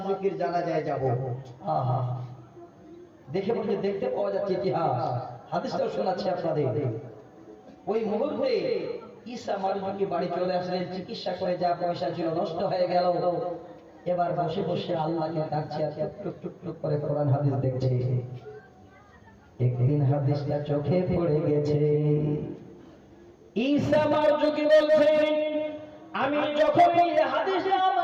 জানাজায় যাব। দেখে বলতে দেখতে পাওয়া যাচ্ছে ইতিহাস, হাদিসটাও শোনাচ্ছি আপনাদের। ওই মুহূর্তে ঈসা মারজুকি বাড়ি চলে আসলেন। চিকিৎসা করে যা পয়সা ছিল নষ্ট হয়ে গেল। এবার বসে বসে আল্লাহকে ডাকছে আর টুক টুক টুক করে কোরআন হাদিস দেখছে। একদিন হাদিসটা চোখে পড়ে গেছে। ঈসা মারজুকি বলছেন, আমি যখন এই হাদিসটা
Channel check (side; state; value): both; identical; correlation 1.00